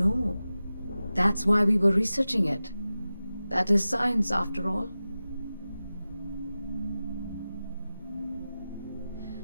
That's why we were researching it. That is science, after all.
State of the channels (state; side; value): inverted; both; correlation -0.95